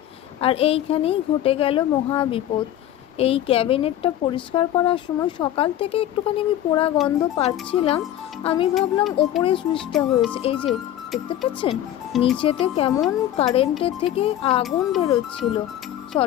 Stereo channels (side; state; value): right; quieter; 12.1 dB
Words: আর এইখানেই ঘটে গেল মহা বিপদ। এই ক্যাবিনেটটা পরিষ্কার করার সময় সকাল থেকে একটুখানি আমি পোড়া গন্ধ পাচ্ছিলাম। আমি ভাবলাম ওপরে সুইচটা হয়েছে, এই যে দেখতে পাচ্ছেন নিচেতে কেমন কারেন্টের থেকে আগুন বেরোচ্ছিল